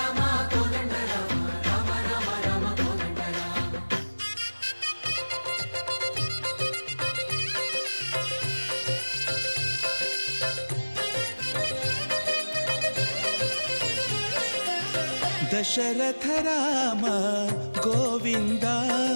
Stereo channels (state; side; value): inverted; both; correlation -1.00